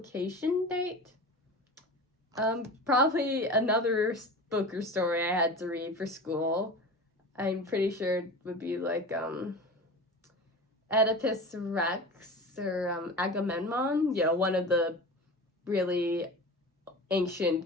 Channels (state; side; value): normal; both; correlation 0.32